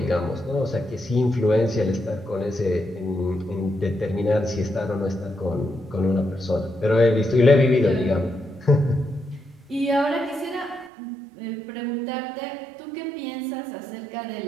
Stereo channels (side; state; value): left; drops out; at 10.9 s